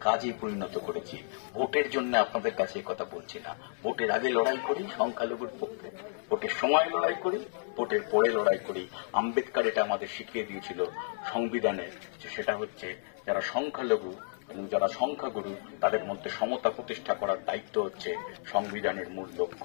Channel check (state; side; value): silent; right; digital silence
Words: কাজে পরিণত করেছি। ভোটের জন্য আপনাদের কাছে কথা বলছি না। ভোটের আগে লড়াই করি সংখ্যালঘুর পক্ষে, ভোটের সময় লড়াই করি, ভোটের পরে লড়াই করি। আম্বেদকর এটা আমাদের শিখিয়ে দিয়েছিল সংবিধানে, যে সেটা হচ্ছে যারা সংখ্যালঘু এবং যারা সংখ্যাগুরু তাদের মধ্যে সমতা প্রতিষ্ঠা করার দায়িত্ব হচ্ছে সংবিধানের মূল